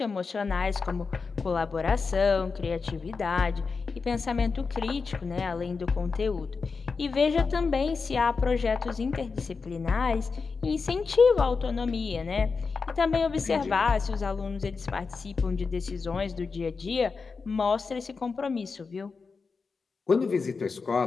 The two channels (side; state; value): right; quieter; 4.8 dB